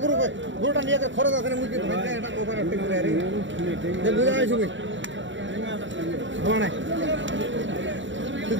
গরুটা নিয়ে খরচ আছে না মুরগি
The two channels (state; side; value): late; left; 0.55 ms